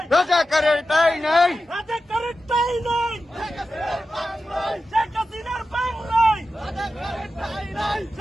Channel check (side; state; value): both; normal; correlation 0.92